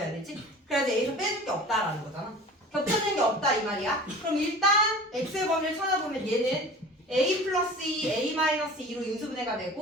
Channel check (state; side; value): normal; both; correlation 0.40